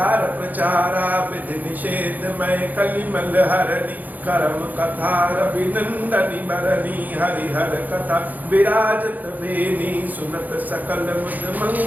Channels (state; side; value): late; left; 0.082 ms